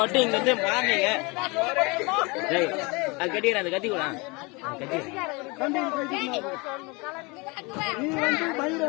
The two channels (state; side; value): quieter; right; 27.1 dB